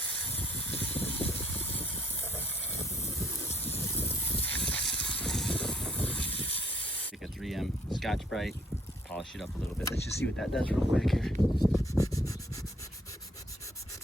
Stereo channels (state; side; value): normal; both; correlation 0.64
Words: Take a 3M Scotch-Brite, polish it up a little bit. Let's just see what that does real quick here.